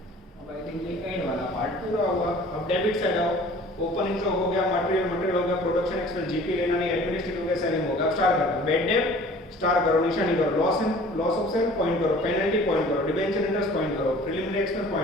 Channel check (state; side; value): normal; both; correlation 0.48